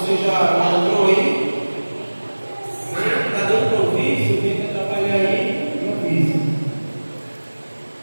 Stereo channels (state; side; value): inverted; both; correlation -1.00